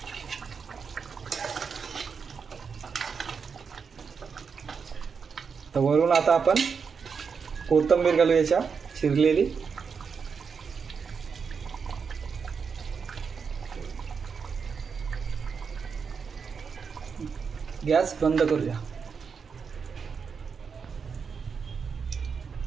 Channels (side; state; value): left; quieter; 5.9 dB